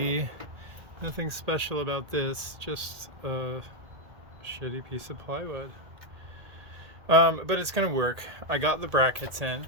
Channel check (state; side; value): late; left; 1.8 ms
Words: nothing special about this, just a shitty piece of plywood, but it's gonna work. I got the brackets in.